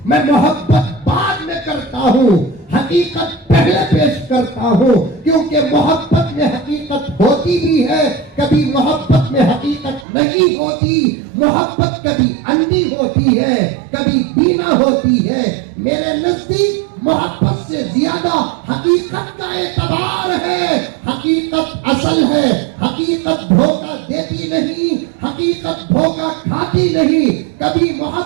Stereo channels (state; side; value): drops out; left; at 10.1 s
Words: میں محبت بعد میں کرتا ہوں، حقیقت پہلے پیش کرتا ہوں، کیونکہ محبت میں حقیقت ہوتی بھی ہے، کبھی محبت میں حقیقت نہیں ہوتی، محبت کبھی اندھی ہوتی ہے، کبھی بینا ہوتی ہے۔ میرے نزدیک محبت سے زیادہ حقیقت کا اعتبار ہے، حقیقت اصل ہے، حقیقت دھوکہ دیتی نہیں، حقیقت دھوکہ کھاتی نہیں، کبھی